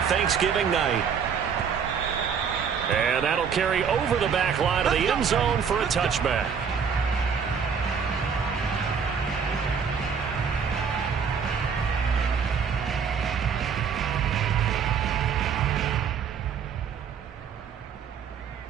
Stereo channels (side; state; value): left; quieter; 6.7 dB